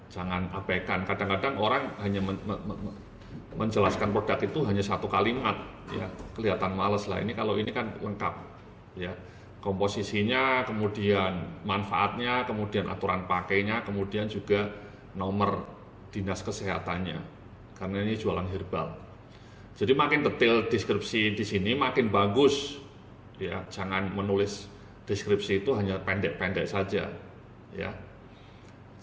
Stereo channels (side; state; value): both; identical; correlation 1.00